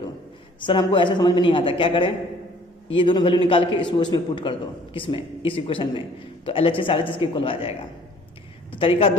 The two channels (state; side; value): normal; both; correlation 0.55